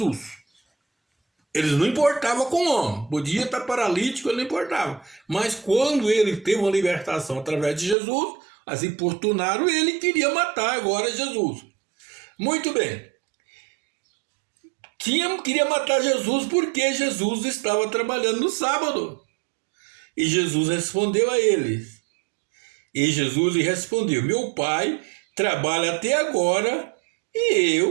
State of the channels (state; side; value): drops out; left; at 8.0 s